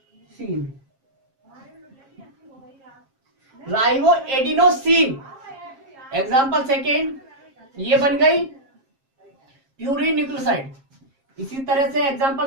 एग्जाम्पल सेकेंड, ये बन गई प्यूरिन न्यूक्लियोसाइड। इसी तरह से एग्जाम्पल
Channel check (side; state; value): left; late; 7.5 ms